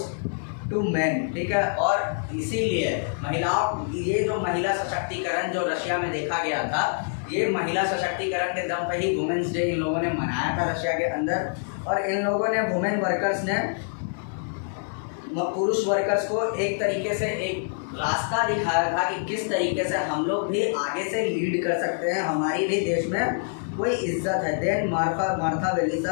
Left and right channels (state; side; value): silent; right; 61 dB below the other